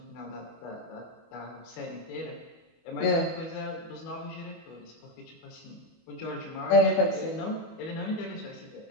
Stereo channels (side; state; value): right; late; 24 ms